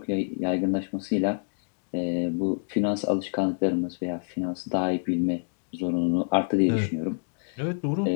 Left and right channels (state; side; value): silent; right; digital silence